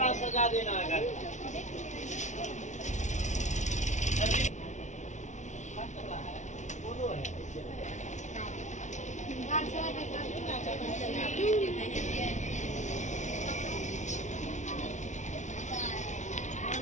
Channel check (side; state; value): right; late; 0.35 ms